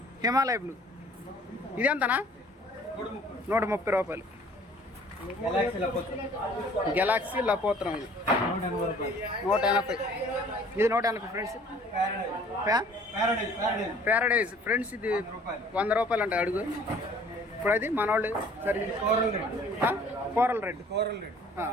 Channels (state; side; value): normal; both; correlation 0.53